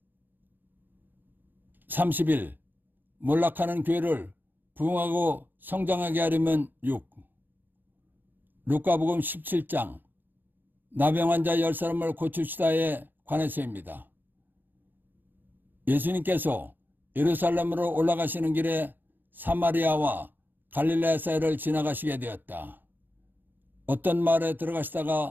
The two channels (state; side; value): late; left; 0.091 ms